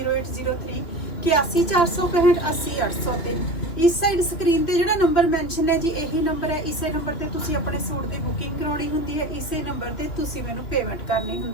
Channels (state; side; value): late; right; 3.0 ms